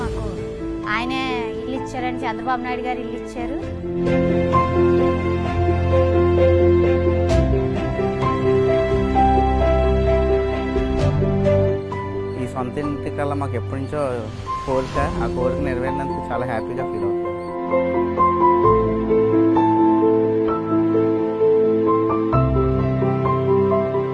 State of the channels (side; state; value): both; identical; correlation 1.00